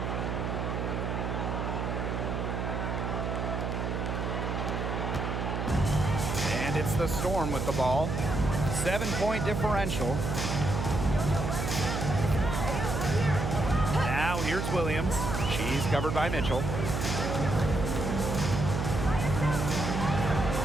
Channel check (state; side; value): noise; right; hum, 2 dB below the sound